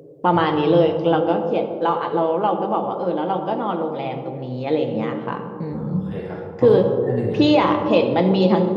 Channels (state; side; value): identical; both; correlation 1.00